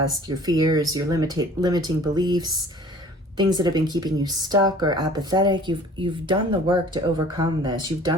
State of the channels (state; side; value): normal; both; correlation 0.49